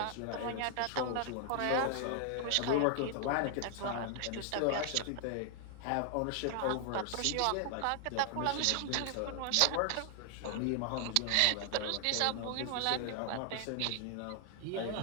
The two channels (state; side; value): different; both; correlation 0.00